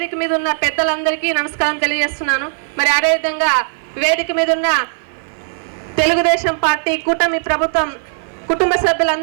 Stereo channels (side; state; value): left; silent; 55 dB below the other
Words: మీద ఉన్న పెద్దలందరికీ నమస్కారం తెలియజేస్తున్నాను. మరి అదేవిధంగా వేదిక మీద ఉన్న తెలుగుదేశం పార్టీ కూటమి ప్రభుత్వం కుటుంబ